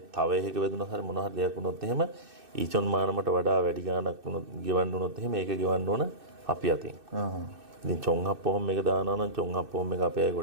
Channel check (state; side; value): late; left; 2.6 ms